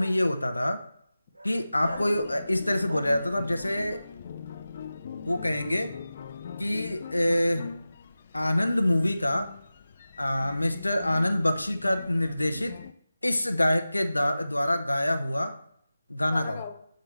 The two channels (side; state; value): both; inverted; correlation -0.96